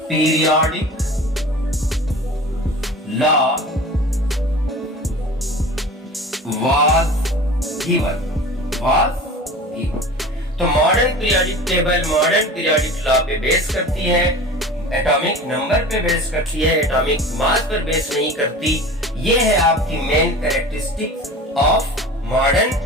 periodic law was given। तो modern periodic table modern periodic law पे बेस करती है, एटॉमिक नंबर पे बेस करती है, एटॉमिक मास पर बेस नहीं करती। ये है आपकी main characteristics of modern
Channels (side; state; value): both; normal; correlation 0.38